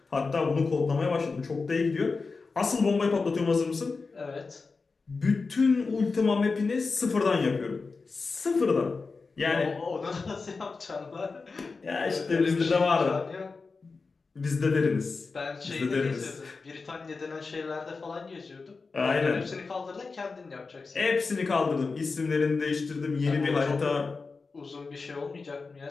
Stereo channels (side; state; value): right; quieter; 4.3 dB